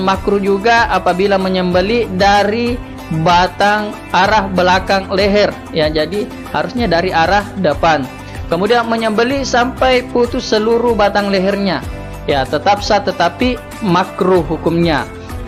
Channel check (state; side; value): identical; both; correlation 1.00